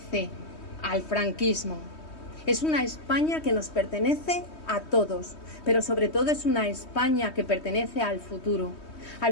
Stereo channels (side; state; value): right; late; 3.2 ms